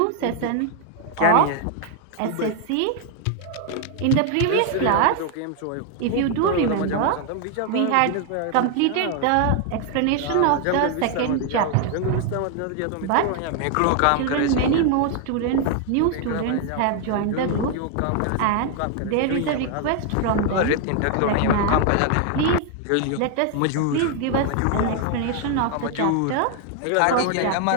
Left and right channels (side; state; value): both; different; correlation 0.00